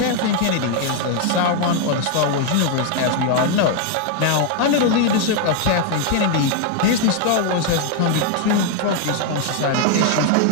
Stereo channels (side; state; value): both; different; correlation 0.00